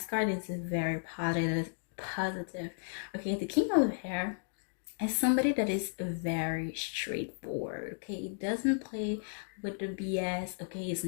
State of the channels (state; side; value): silent; right; digital silence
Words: card is very positive. Okay, the King of Hair is somebody that is very straightforward. Okay, doesn't play with the BS. Okay, is